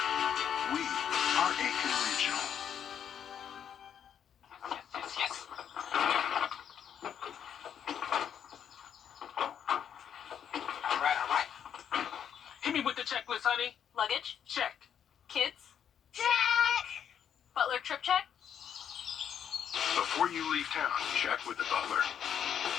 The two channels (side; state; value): right; quieter; 8.7 dB